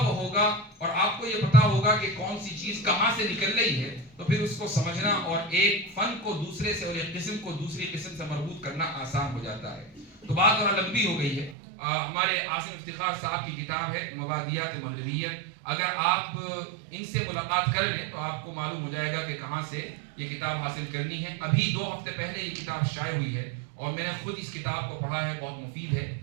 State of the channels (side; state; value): left; drops out; at 11.6 s